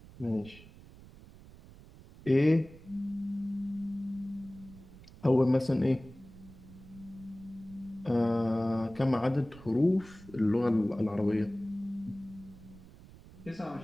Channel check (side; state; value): right; noise; rumble, 20 dB below the sound